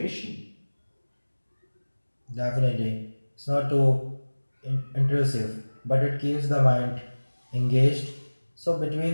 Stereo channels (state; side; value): inverted; both; correlation -1.00